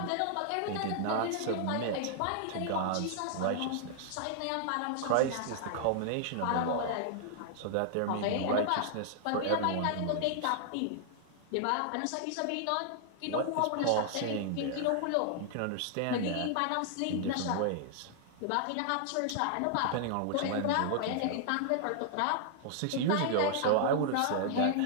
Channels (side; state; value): both; different; correlation -0.01